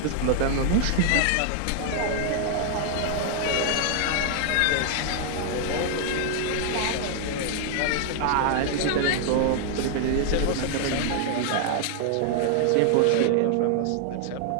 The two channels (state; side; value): different; both; correlation 0.00